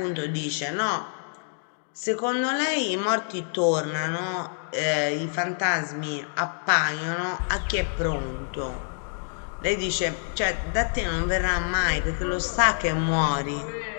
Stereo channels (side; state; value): right; silent; digital silence